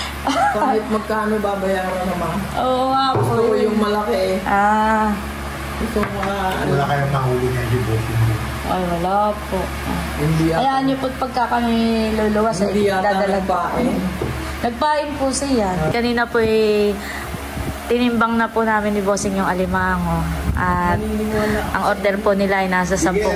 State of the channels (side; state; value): both; identical; correlation 1.00